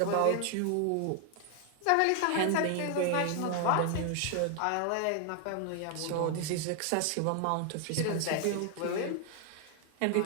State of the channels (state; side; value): different; both; correlation 0.00